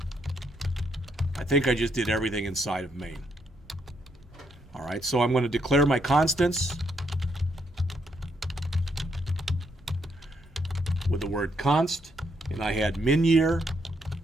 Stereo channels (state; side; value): normal; both; correlation 0.75